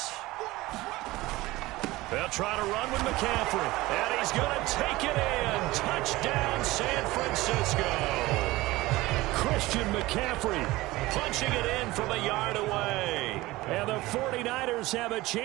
They'll try to run with McCaffrey, and he's going to take it in. Touchdown, San Francisco. Christian McCaffrey punching it in from a yard away. And the 49ers have a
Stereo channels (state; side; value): quieter; left; 19.2 dB